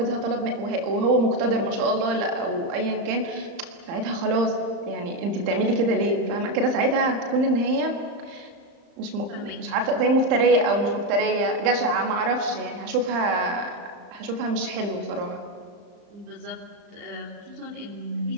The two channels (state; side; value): late; left; 35 ms